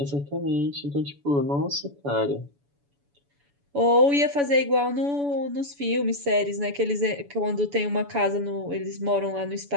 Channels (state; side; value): late; left; 7.0 ms